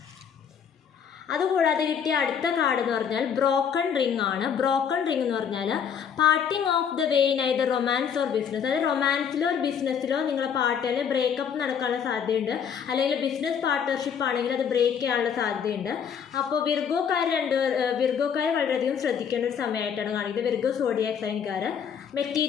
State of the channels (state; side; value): quieter; right; 7.5 dB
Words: അതുകൂടാതെ കിട്ടിയ അടുത്ത കാർഡ് എന്ന് പറഞ്ഞാൽ ബ്രോക്കൺ റിംഗ് ആണ്. ബ്രോക്കൺ റിംഗ് എന്ന് പറഞ്ഞാൽ parting of the way in either romance or business. അതായത് റൊമാൻസിലോ ബിസിനസ്സിലോ നിങ്ങളെ പാർട്ടിയിൽ ബ്രേക്കപ്പ് നടക്കാനുള്ള സാധ്യതയുണ്ട്, അല്ലെങ്കിൽ ബിസിനസ് പാർട്ട്ണർഷിപ്പ് ആണെങ്കിൽ അത് ബ്രേക്ക് ചെയ്യാനുള്ള സാധ്യതയുണ്ട്. അപ്പോൾ വിർഗോക്കാർ വളരെയധികം ശ്രദ്ധിക്കേണ്ട ഒരു സമയമായിട്ടാണ് കാണിക്കുന്നത്. വിർഗോ സോഡിയാക് സൈൻകാർ